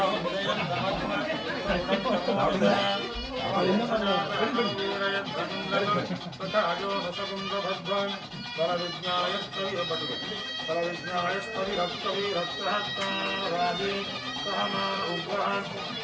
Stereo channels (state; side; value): identical; both; correlation 1.00